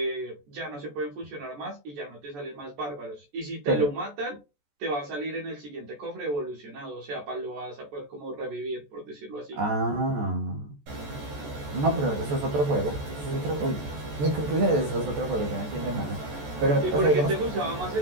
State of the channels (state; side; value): late; left; 14 ms